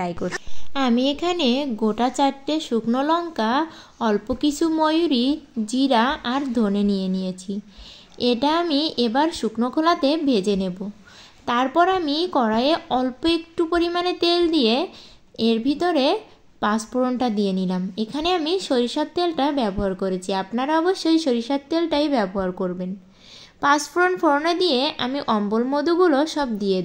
করছি। আমি এখানে গোটা 4টে শুকনো লঙ্কা, অল্প কিছু ময়ূরী, জিরা আর ধনে নিয়েছি। এটা আমি এবার শুকনো খোলাতে ভেজে নেব। তারপর আমি কড়াইয়ে অল্প একটু পরিমাণে তেল দিয়ে এর ভিতরে পাঁচফোড়নটা দিয়ে নিলাম। এখানে আমি সরিষার তেলটা ব্যবহার করেছি, আপনারা অবশ্যই সরিষার তেলটাই ব্যবহার করবেন। পাঁচফোড়ন ফোড়নে দিয়ে আমি অম্বল মধুগুলো সব দিয়ে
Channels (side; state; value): both; identical; correlation 1.00